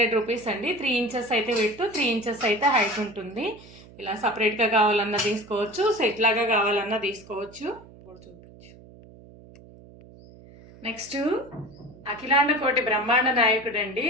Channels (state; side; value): noise; right; hum, 21 dB below the sound